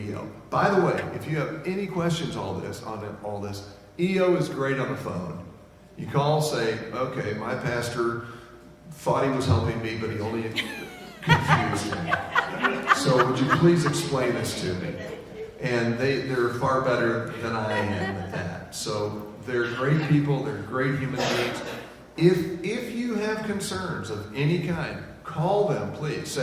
EO. By the way, if you have any questions on all this, EO is great on the phone. You call, say, okay, my pastor thought he was helping me, but he only confused me. So would you please explain this to me? And they're far better than I am at that. So they're great people, they're great human beings. If you have concerns of any kind, call them, please.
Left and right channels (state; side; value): identical; both; correlation 1.00